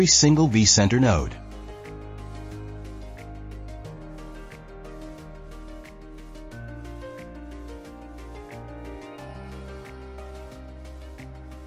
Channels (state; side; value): identical; both; correlation 1.00